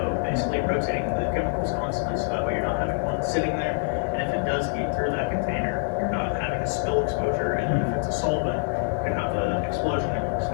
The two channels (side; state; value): right; silent; 61 dB below the other